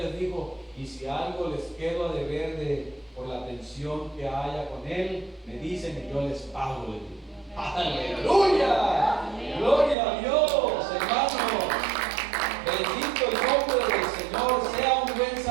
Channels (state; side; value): drops out; left; at 10.0 s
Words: dijo, y si algo les quedo a deber por la atención que haya con él, me dicen y yo les pago. ¡Aleluya! ¡Gloria a Dios, hermanos! Bendito el nombre del Señor. Sea un buen